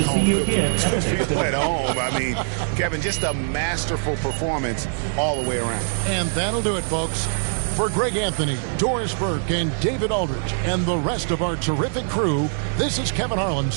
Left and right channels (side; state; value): left; silent; digital silence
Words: at home. I mean, Kevin, just a masterful performance all the way around. And that'll do it, folks. For Greg Anthony, Doris Burke, and David Aldridge, and the rest of our terrific crew, this is Kevin Harlan